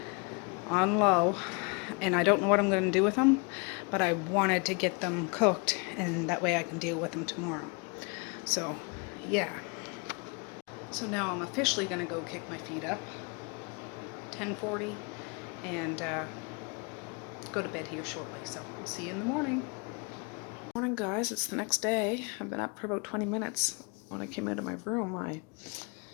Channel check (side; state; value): right; quieter; 32.1 dB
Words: on low, and I don't know what I'm going to do with them, but I wanted to get them cooked, and that way I can deal with them tomorrow. So yeah, so now I'm officially going to go kick my feet up, 10:40, and go to bed here shortly. So I'll see you in the morning. Morning, guys. It's the next day. I've been up for about 20 minutes. When I came out of my room, I